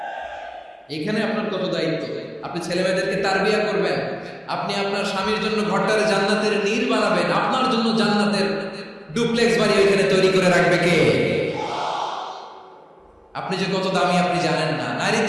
এখানে আপনার কত দায়িত্ব। আপনি ছেলেমেয়েদেরকে তারবিয়া করবেন। আপনি আপনার স্বামীর জন্য ঘরটারে জান্নাতের নীর বানাবেন। আপনার জন্য জান্নাতের ডুপ্লেক্স বাড়ি ওইখানে তৈরি করে রাখবে কে? আপনি যে কত দামি আপনি জানেন না।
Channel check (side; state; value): both; identical; correlation 1.00